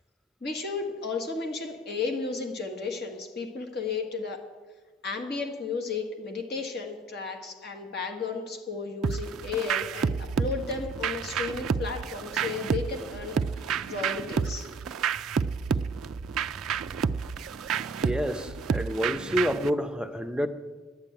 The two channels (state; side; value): normal; both; correlation 0.55